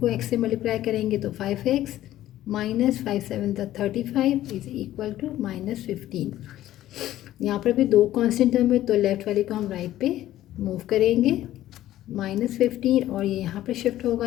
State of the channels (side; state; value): right; quieter; 13.8 dB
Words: x से मल्टीप्लाई करेंगे तो 5x minus 5 7 35 is equal to minus 15। यहाँ पर भी 2 कांस्टेंट टर्म है तो लेफ्ट वाले को हम राइट पे मूव करेंगे, माइनस 15, और ये यहाँ पे शिफ्ट होगा,